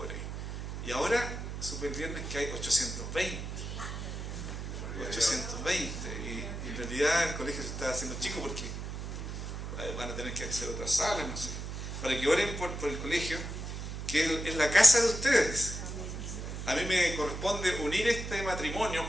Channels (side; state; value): right; noise; hum, 6 dB below the sound